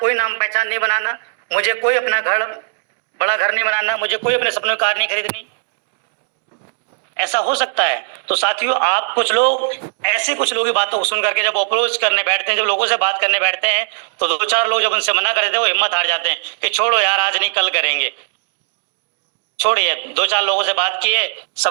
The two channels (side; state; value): left; silent; digital silence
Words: नाम पहचान नहीं बनाना, मुझे कोई अपना घर, बड़ा घर नहीं बनाना, मुझे कोई अपने सपनों की कार नहीं खरीदनी। ऐसा हो सकता है। तो साथियों, आप कुछ लोग ऐसे कुछ लोगों की बातों को सुन करके जब अप्रोच करने बैठते हैं, जब लोगों से बात करने बैठते हैं, तो 2-4 लोग जब उनसे मना कर देते हैं, वो हिम्मत हार जाते हैं कि छोड़ो यार, आज नहीं कल करेंगे। छोड़िए, 2-4 लोगों से बात किए,